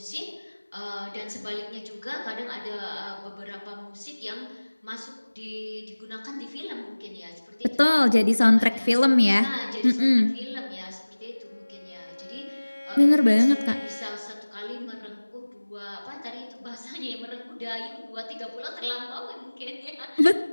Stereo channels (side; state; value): both; inverted; correlation -1.00